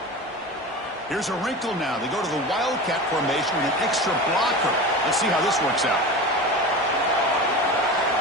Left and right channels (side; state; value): both; normal; correlation 0.30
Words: Here's a wrinkle now. They go to the Wildcat formation with an extra blocker. Let's see how this works out.